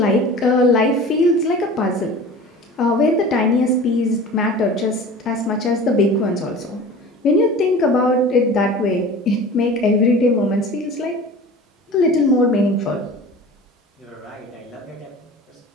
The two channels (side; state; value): both; normal; correlation 0.39